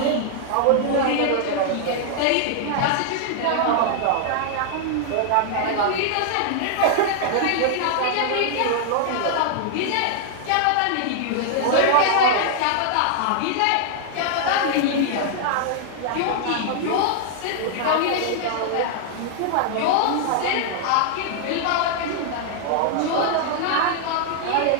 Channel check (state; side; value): different; both; correlation 0.00